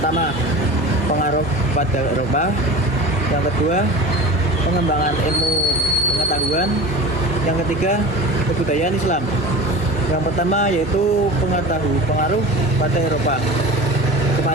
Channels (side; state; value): both; normal; correlation 0.34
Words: pengaruh pada Eropa, yang kedua pengembangan ilmu pengetahuan, yang ketiga kebudayaan Islam. Yang pertama yaitu pengaruh pada Eropa.